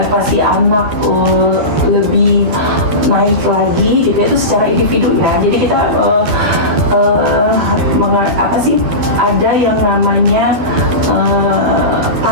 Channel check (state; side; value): late; left; 12 ms